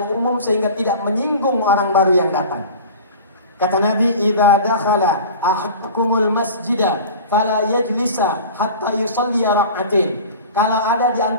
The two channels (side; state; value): both; inverted; correlation -0.37